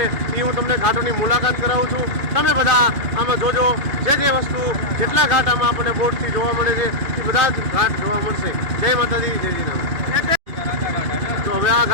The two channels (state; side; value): late; left; 2.3 ms